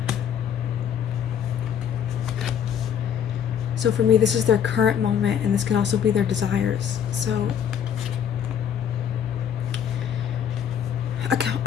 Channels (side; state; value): right; quieter; 8.7 dB